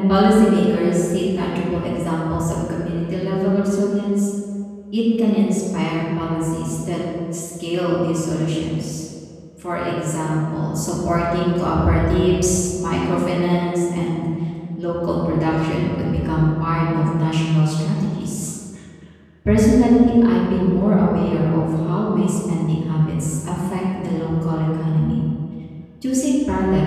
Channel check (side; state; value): both; identical; correlation 1.00